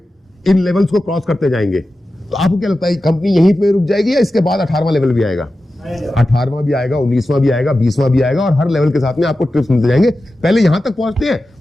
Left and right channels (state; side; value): normal; both; correlation 0.93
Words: इन लेवल्स को क्रॉस करते जाएंगे, तो आपको क्या लगता है कंपनी यहीं पे रुक जाएगी या इसके बाद 18वां लेवल भी आएगा? 18वां भी आएगा, 19वां भी आएगा, 20वां भी आएगा, और हर लेवल के साथ में आपको टिप्स मिलते जाएंगे। पहले यहां तक पहुंचते हैं,